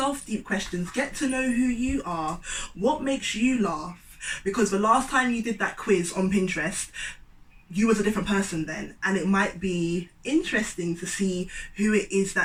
deep questions, get to know who you are, what makes you laugh, because the last time you did that quiz on Pinterest, you was a different person then, and it might be interesting to see who it is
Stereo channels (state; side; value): identical; both; correlation 1.00